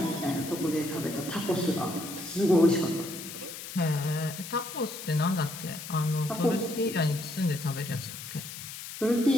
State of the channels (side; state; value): left; noise; hiss, 10 dB below the sound